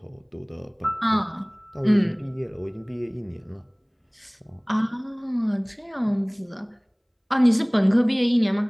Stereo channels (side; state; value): both; identical; correlation 1.00